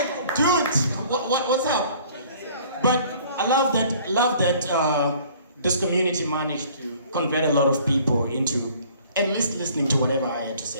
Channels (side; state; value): both; inverted; correlation -0.53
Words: dude, what's up? But I love that this community managed to convert a lot of people into at least listening to whatever I had to